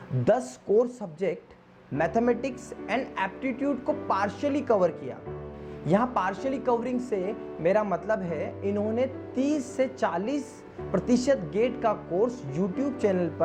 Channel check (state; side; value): identical; both; correlation 1.00